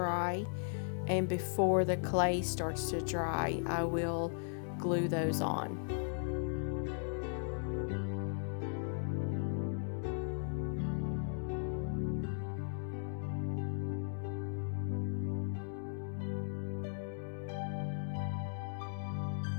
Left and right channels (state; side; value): silent; right; digital silence